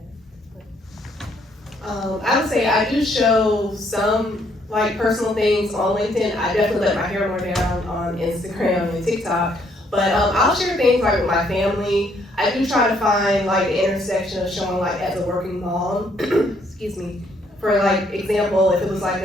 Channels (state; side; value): normal; both; correlation 0.69